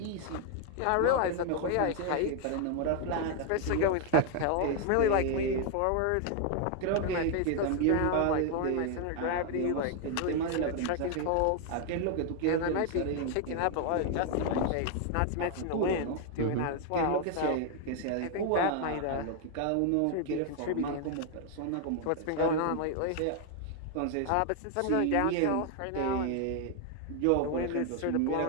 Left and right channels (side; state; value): both; different; correlation 0.00